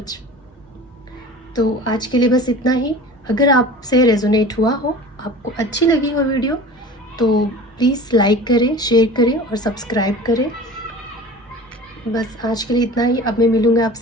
तो आज के लिए बस इतना ही। अगर आपसे रेजोनेट हुआ हो, आपको अच्छी लगी हो वीडियो, तो प्लीज़ लाइक करें, शेयर करें और सब्सक्राइब करें। बस आज के लिए इतना ही। अब मैं मिलूँगा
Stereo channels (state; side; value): normal; both; correlation 0.39